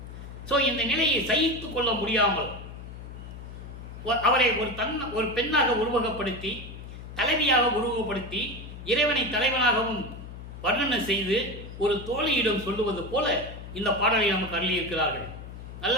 ஸோ இந்த நிலையை சகித்து கொள்ள முடியாமல் அவரை ஒரு பெண்ணாக உருவகப்படுத்தி, தலைவியாக உருவகப்படுத்தி, இறைவனை தலைவனாகவும் வர்ணனை செய்து ஒரு தோழியிடம் சொல்லுவது போல இந்த பாடலை நமக்கு அருளியிருக்கிறார்கள். நல்ல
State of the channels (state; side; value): noise; left; hum, 12 dB below the sound